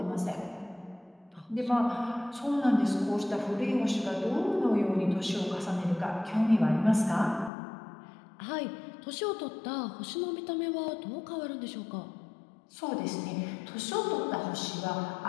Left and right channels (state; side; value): drops out; right; at 7.5 s